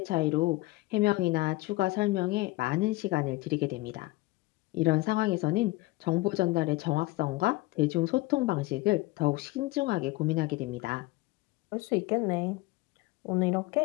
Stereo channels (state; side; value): quieter; right; 20.6 dB